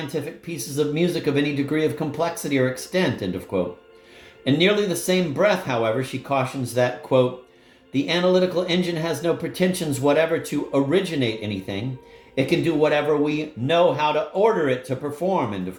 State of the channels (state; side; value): identical; both; correlation 1.00